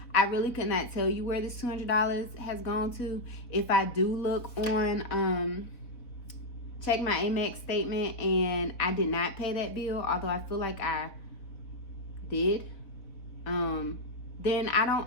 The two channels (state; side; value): late; right; 3.9 ms